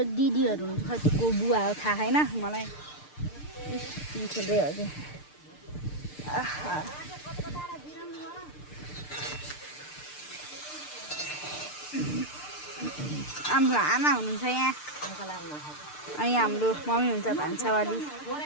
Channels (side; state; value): right; late; 6.7 ms